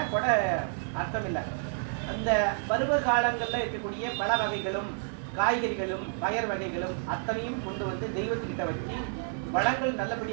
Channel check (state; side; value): silent; left; digital silence